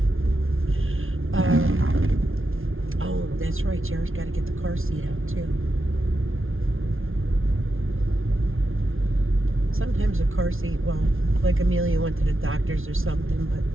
oh, that's right, Jared's got to get the car seat out too. Sometimes a car seat, well, like Amelia went to the doctor's or something, but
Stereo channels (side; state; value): left; late; 0.60 ms